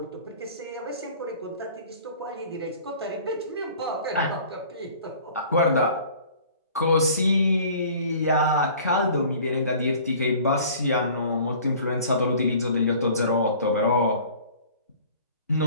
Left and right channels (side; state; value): both; inverted; correlation -0.49